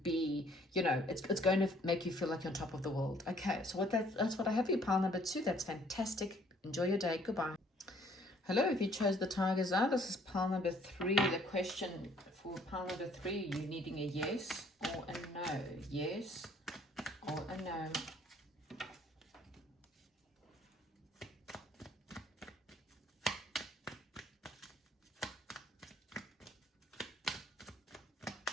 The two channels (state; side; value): normal; both; correlation 0.61